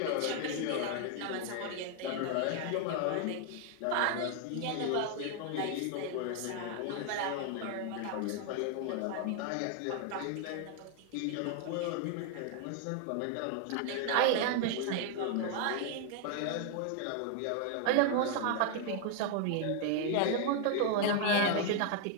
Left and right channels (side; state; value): both; different; correlation 0.00